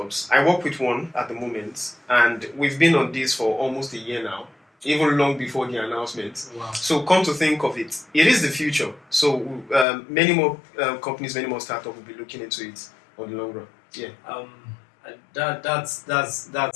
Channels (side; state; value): right; drops out; at 9.9 s